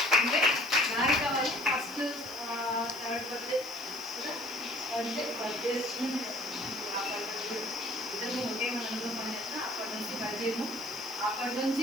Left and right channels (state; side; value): noise; left; hiss, 17 dB below the sound